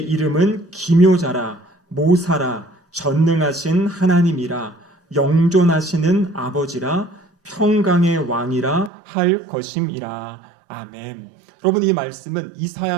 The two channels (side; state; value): left; drops out; at 8.9 s